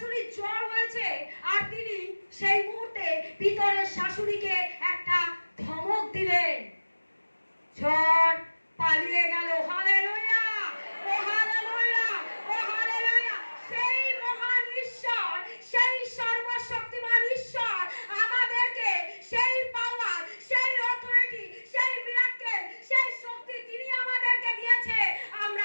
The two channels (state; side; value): inverted; both; correlation -1.00